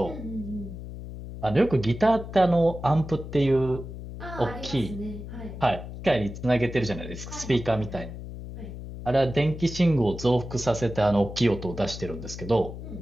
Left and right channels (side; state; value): left; noise; hum, 10 dB below the sound